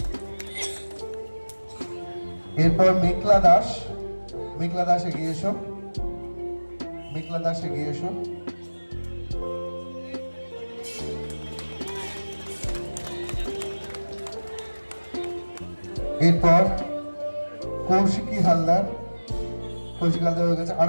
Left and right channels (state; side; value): inverted; both; correlation -1.00